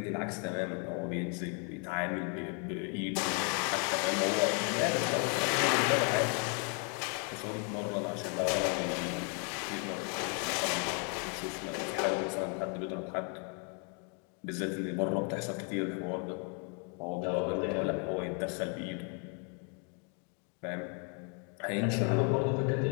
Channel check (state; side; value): quieter; right; 38.5 dB